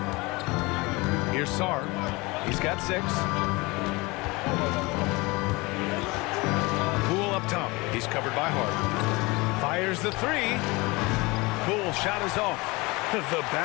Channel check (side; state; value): right; quieter; 24.2 dB